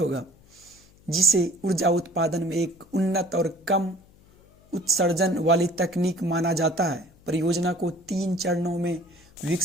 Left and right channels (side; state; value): left; noise; hum, 28 dB below the sound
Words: जिसे ऊर्जा उत्पादन में एक उन्नत और कम उत्सर्जन वाली तकनीक माना जाता है। परियोजना को 3 चरणों में